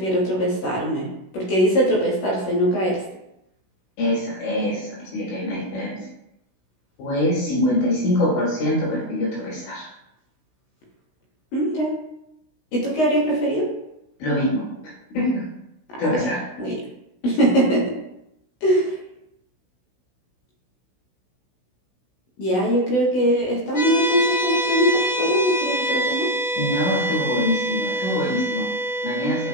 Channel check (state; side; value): late; right; 16 ms